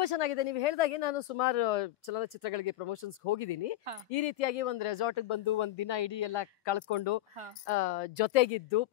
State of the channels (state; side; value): quieter; right; 14.5 dB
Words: ಚೆನ್ನಾಗಿದೆ. ನೀವು ಹೇಳ್ದಾಗೆ ನಾನು ಸುಮಾರು ಚಲನಚಿತ್ರಗಳಿಗೆ ಪ್ರಮೋಷನ್ಸ್ ಹೋಗಿದ್ದೀನಿ. ಈ ರೀತಿಯಾಗಿ ಒಂದು ರೆಸಾರ್ಟ್ ಬಂದು ಒಂದ್ ದಿನ ಇಡೀ ಎಲ್ಲ ಕಳ್ಕೊಂಡು ಜೊತೆಗಿದ್ದು